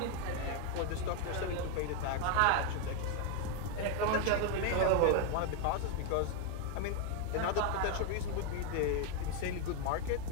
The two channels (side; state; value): both; different; correlation 0.01